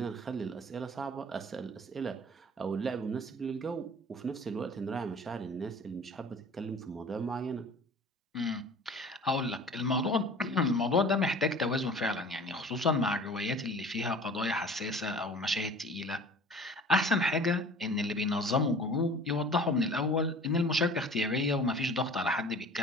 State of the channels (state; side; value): normal; both; correlation 0.44